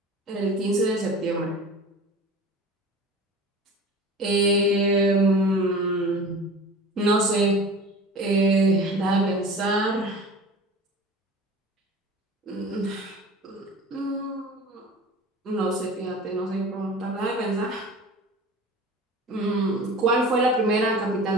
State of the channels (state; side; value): normal; both; correlation 0.38